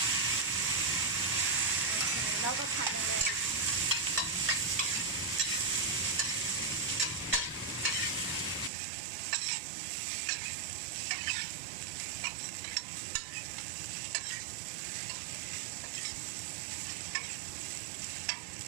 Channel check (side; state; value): left; drops out; at 8.7 s